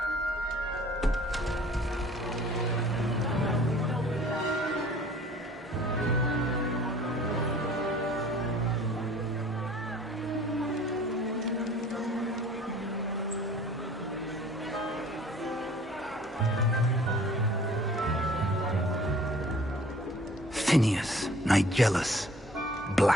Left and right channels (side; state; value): both; normal; correlation 0.51